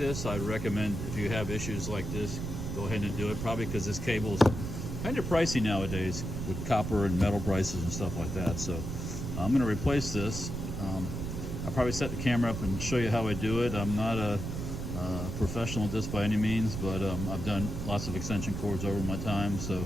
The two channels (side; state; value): right; noise; rumble, 5 dB below the sound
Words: I'd recommend, if you have issues like this, go ahead and do it. Probably because this cable is kind of pricey nowadays with copper and metal prices and stuff like that. So I'm going to replace this. I'll probably set the camera up and show you how I do it. I'm not a professional at this by any means, but I've done lots of extension cords over my time, so